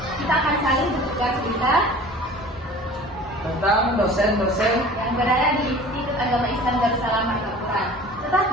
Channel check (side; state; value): both; normal; correlation 0.43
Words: kita akan saling bertukar cerita Tentang dosen-dosen yang berada di Institut Agama Islam Darussalam Marta Quran.